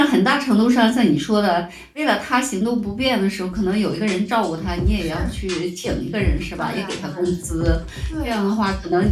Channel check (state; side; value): identical; both; correlation 1.00